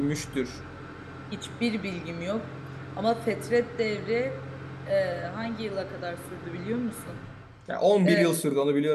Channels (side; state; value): both; identical; correlation 1.00